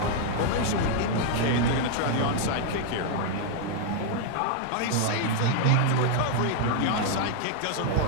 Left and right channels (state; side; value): different; both; correlation 0.00